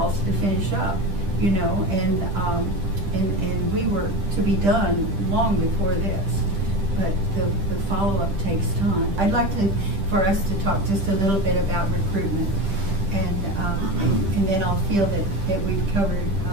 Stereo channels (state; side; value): late; left; 10 ms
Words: to finish up, you know, and we were to be done long before this. But the follow-up takes time. I'd like for us to talk just a little bit about recruitment, and then I'll feel that we've covered